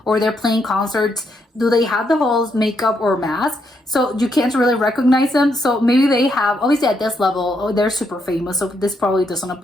or they're playing concerts? Do they have the whole makeup or mask? So you can't really recognize them. So maybe they have, obviously at this level, oh, they're super famous. So this probably doesn't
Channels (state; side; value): normal; both; correlation 0.78